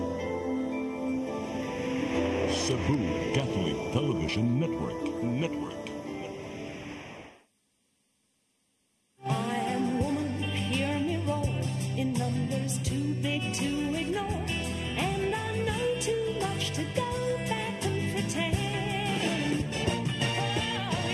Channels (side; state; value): both; identical; correlation 1.00